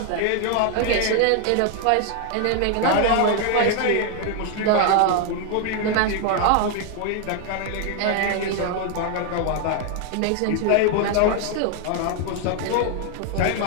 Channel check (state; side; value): different; both; correlation 0.00